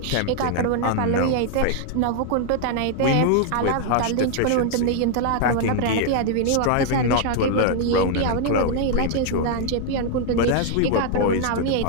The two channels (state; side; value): different; both; correlation 0.00